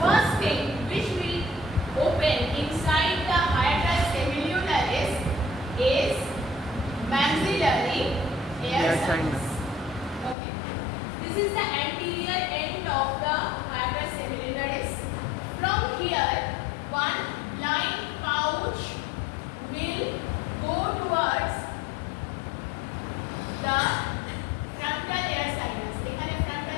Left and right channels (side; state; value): right; drops out; at 10.4 s